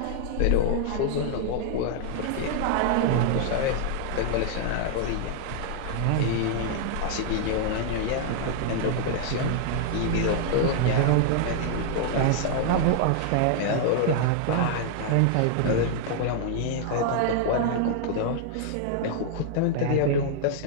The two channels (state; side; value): different; both; correlation 0.00